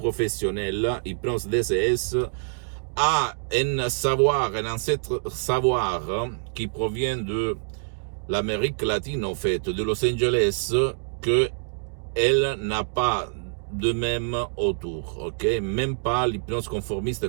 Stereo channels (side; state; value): left; silent; digital silence